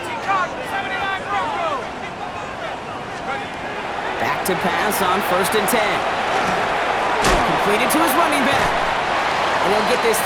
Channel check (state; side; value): identical; both; correlation 1.00